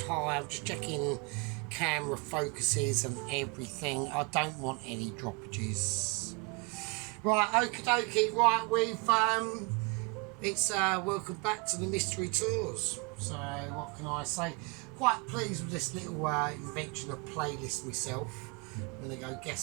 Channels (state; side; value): quieter; left; 30.1 dB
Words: high. I'm just checking camera focuses and everything. I don't want any droppages. Right, okie dokie. Right, it's welcome back to the mystery tours. So what can I say? Quite pleased with this little invention of playlist myself. I'm going to go